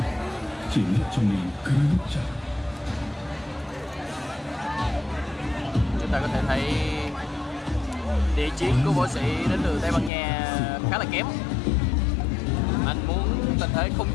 chỉ là trong mình cứ chặt. Chúng ta có thể thấy địa chiến của võ sĩ đến từ Tây Ban Nha khá là kém. Anh muốn tình thế không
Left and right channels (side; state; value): right; drops out; at 10.1 s